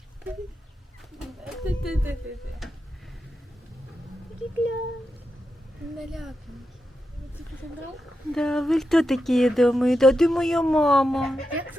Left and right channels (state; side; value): normal; both; correlation 0.88